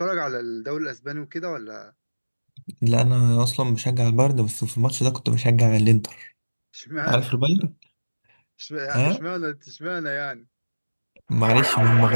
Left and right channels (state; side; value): inverted; both; correlation -1.00